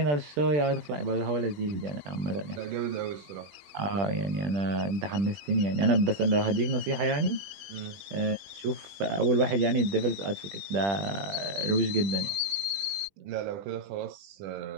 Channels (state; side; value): late; left; 20 ms